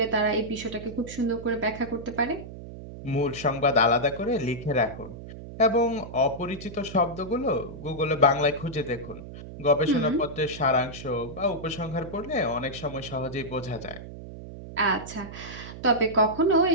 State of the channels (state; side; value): noise; right; hum, 12 dB below the sound